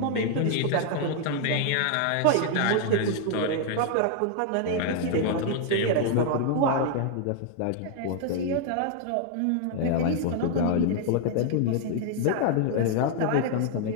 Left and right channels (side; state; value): both; different; correlation 0.00